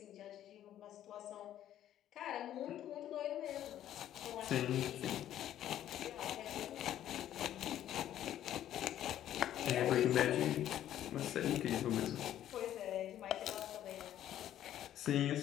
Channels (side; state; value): right; quieter; 11.7 dB